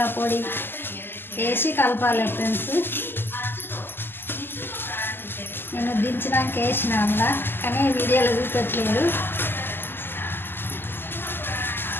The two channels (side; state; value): right; late; 0.10 ms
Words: పొడి వేసి కలపాలి ఫ్రెండ్స్. నేను దించడానికి వేసిన అలా, కానీ వీడియోలో చూపెట్టలేదు.